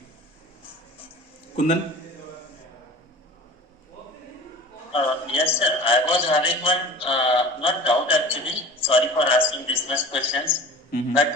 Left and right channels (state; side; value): normal; both; correlation 0.39